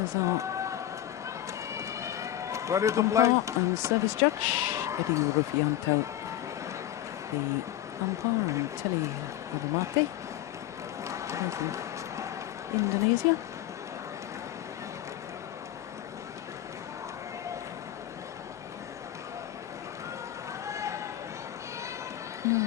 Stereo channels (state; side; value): quieter; right; 12.8 dB